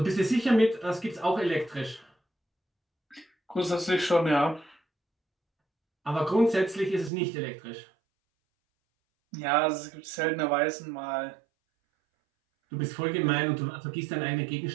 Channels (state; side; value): drops out; left; at 7.1 s